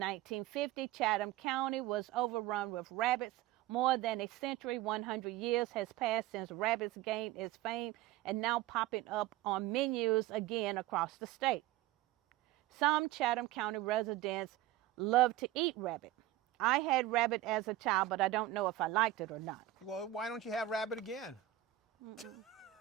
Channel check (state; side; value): quieter; left; 14.6 dB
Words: Chatham County was overrun with rabbits. More than a century, 100 years has passed since rabbits gained its fame and now popping up on menus again across the state. Some Chatham County residents love to eat rabbit. I had rabbit as a child, but I don't know if I liked it or not. Well, why don't you have rabbit again?